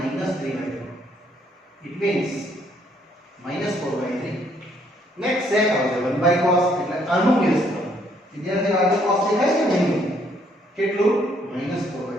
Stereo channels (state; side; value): normal; both; correlation 0.68